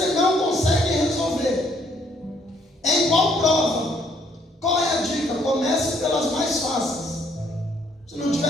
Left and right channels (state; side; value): normal; both; correlation 0.66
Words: não consegue resolver. Em qual prova? Qual é a dica? Comece pelas mais fáceis. Se não